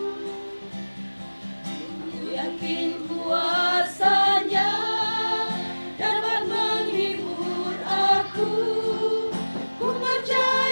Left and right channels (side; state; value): both; inverted; correlation -1.00